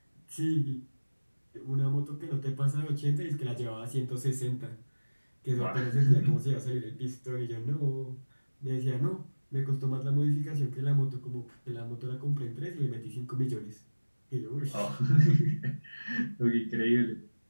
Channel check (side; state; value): both; inverted; correlation -1.00